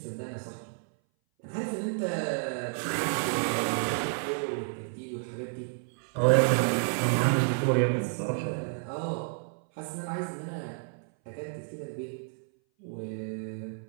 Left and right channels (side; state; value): left; silent; 57 dB below the other